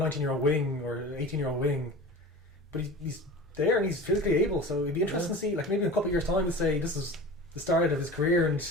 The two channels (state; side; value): normal; both; correlation 0.35